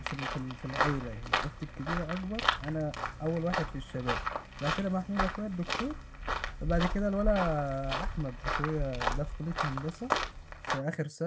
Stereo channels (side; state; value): both; identical; correlation 1.00